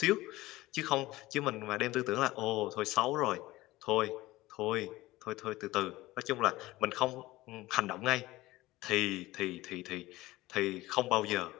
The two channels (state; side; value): quieter; right; 18.4 dB